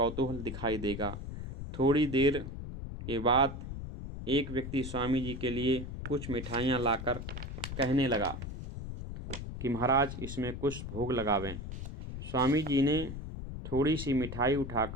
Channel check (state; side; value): noise; left; rumble, 8 dB below the sound